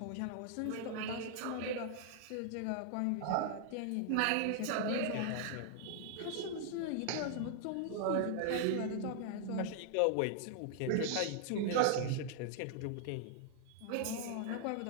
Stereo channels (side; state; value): both; different; correlation -0.01